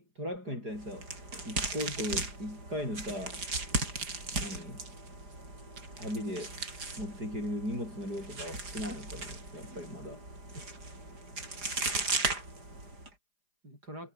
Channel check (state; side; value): late; left; 4.9 ms